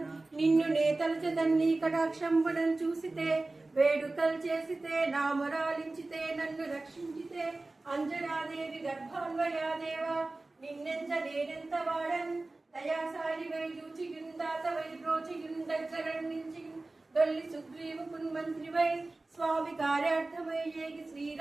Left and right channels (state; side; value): quieter; left; 3.2 dB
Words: నిన్ను నే తలచెదన్ నీ కటాక్షంబునను చూసితే వేడుకలు చేసితే నామరాలించితే నన్ను రక్షించితే అంజనాదేవి గర్భాన్వయాదేవా నిన్నెంత నేనెంత వాడన్ దయాసారి వై దూచియుందాత వై బ్రోచియుందగ్గరణించి దొల్లి సుగ్రీవు కున్మంత్రి వై స్వామి కార్యార్థమై ఏగి